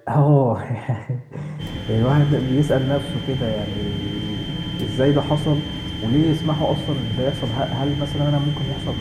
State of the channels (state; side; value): identical; both; correlation 1.00